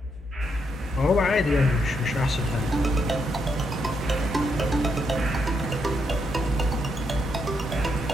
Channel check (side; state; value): both; normal; correlation 0.78